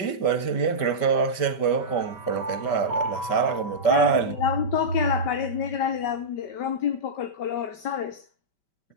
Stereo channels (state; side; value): late; right; 5.2 ms